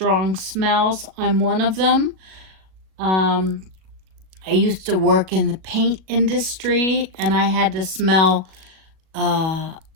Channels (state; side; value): late; left; 37 ms